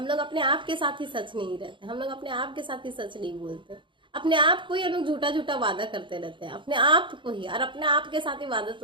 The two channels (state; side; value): late; left; 0.24 ms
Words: लोग अपने आप के साथ ही सच नहीं रहते, हम लोग अपने आप के साथ ही सच नहीं बोलते, अपने आप को ही हम लोग झूठा झूठा वादा करते रहते हैं, अपने आप को ही, और अपने आप के साथ ही वादा